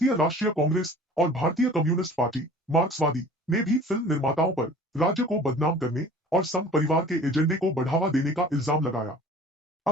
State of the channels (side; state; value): both; normal; correlation 0.46